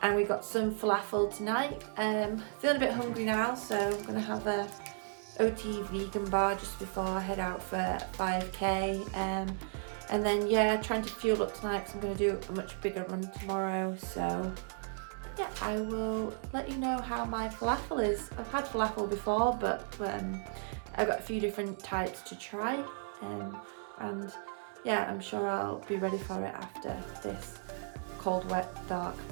we got some falafel tonight. Feeling a bit hungry now, so I'm going to have a OTE vegan bar just before I head out for 5k. And then yeah, trying to fuel up tonight because I'm going to do a much bigger run tomorrow. So yeah, I will let you know how my falafel is. I've had falafel before, but I've got a few different types to try, and yeah, I'm sure I'll be ready for it after this cold, wet, dark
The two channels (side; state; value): left; silent; 55 dB below the other